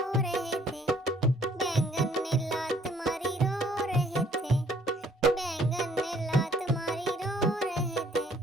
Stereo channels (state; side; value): normal; both; correlation 0.62